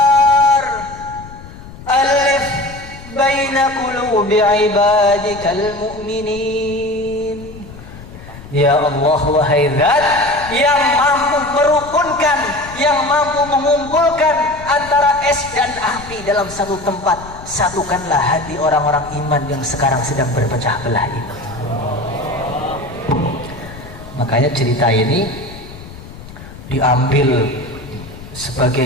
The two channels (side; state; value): left; noise; rumble, 16 dB below the sound